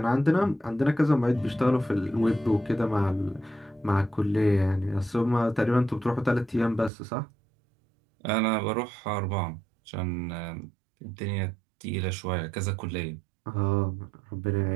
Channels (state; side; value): drops out; left; at 6.9 s